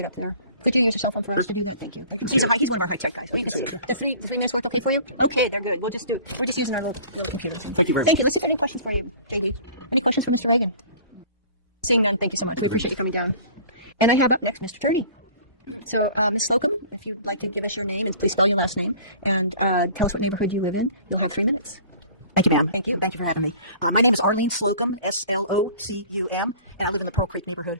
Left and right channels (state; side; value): inverted; both; correlation -0.46